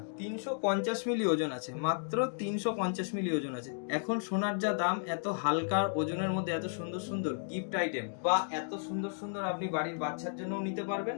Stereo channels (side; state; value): right; silent; digital silence